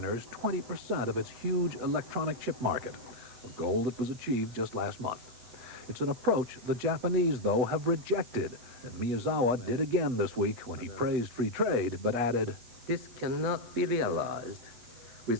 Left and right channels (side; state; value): left; late; 8.0 ms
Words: 20% of its huge electronic chip market, a goal that was achieved just last month. It's an approach the Japanese, though, have rejected, and Miyazawa did again this week when he praised free trade, but added, This cannot be realized